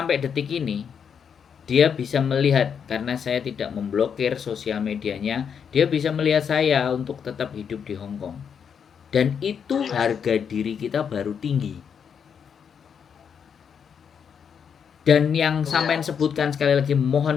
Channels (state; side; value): quieter; right; 7.2 dB